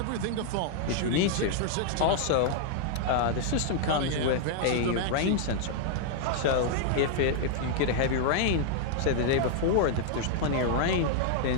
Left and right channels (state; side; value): different; both; correlation -0.01